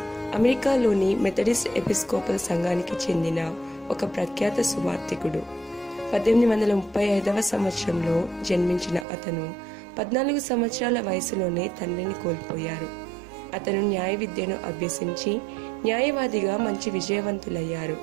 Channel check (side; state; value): left; drops out; at 9.1 s